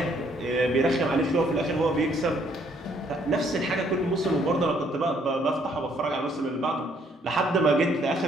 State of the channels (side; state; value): both; normal; correlation 0.67